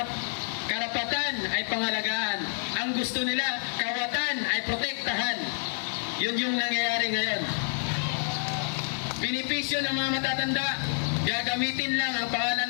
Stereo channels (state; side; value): silent; right; digital silence